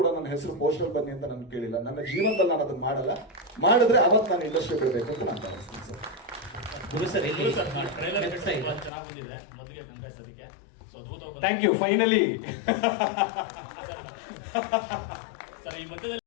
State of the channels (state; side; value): drops out; right; at 8.9 s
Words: ನನ್ನ ಹೆಸರು ಪೋಸ್ಟರ್ ಬನ್ನಿ ಅಂತ ನಾನು ಕೇಳಿಲ್ಲ. ನನ್ನ ಜೀವನದಲ್ಲಿ ನಾನು ಅದನ್ನ ಮಾಡಲ್ಲ. ಮಾಡಿದ್ರೆ ಅವತ್ತು ನಾನು ಇಂಡಸ್ಟ್ರಿ ಬಿಡಬೇಕು ಅಂತ ನಾನು ಭಾವಿಸ್ತೀನಿ ಸರ್. ಚೆನ್ನಾಗಿ ಬಂದಿದೆ. ಮೊದಲಿಗೆ ಕಂಗ್ರೆಸ್ ಅದಕ್ಕೆ ಥ್ಯಾಂಕ್ ಯು. ಫೈನಲಿ ಸರ್, ಈ